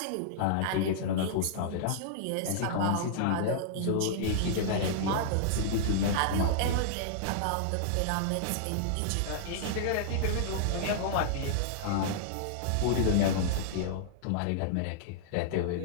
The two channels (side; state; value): both; different; correlation -0.02